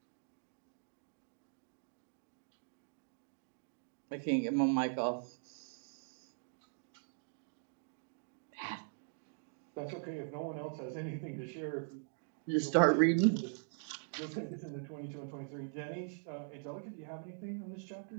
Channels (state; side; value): silent; left; digital silence